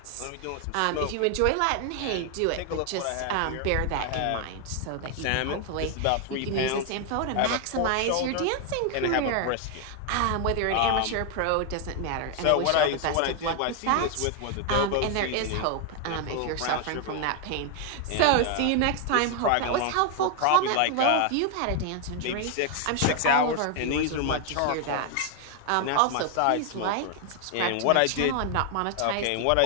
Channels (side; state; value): both; different; correlation 0.01